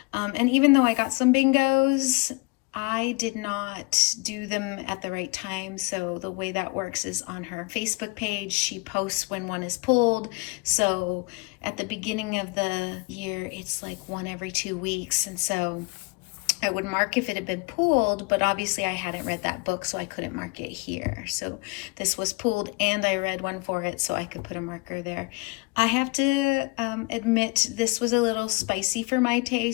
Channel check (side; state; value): right; quieter; 27.8 dB